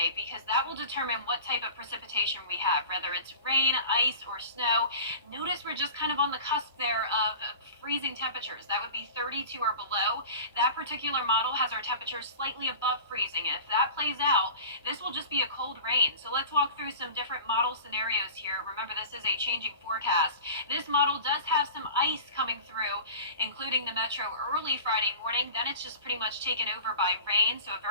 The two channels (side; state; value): both; inverted; correlation -0.37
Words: because that will determine what type of precipitation we have, whether it's rain, ice, or snow. Notice we're just kind of on the cusp there of freezing temperatures. That would be 32 or below. That particular model has our temperatures slightly above freezing, and if that plays out, this will just be a cold rain. So let's walk through some different model scenarios here. Remember, this is a changing forecast. This model does have some ice coming through, including the metro early Friday morning. Then it's just pretty much taken over by rain, so a